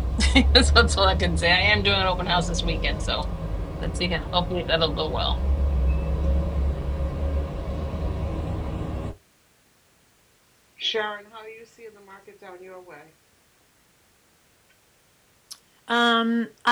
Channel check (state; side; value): identical; both; correlation 1.00